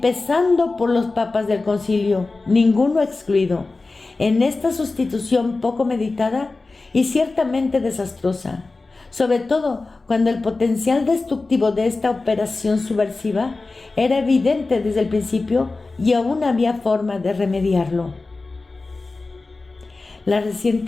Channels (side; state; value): right; quieter; 3.5 dB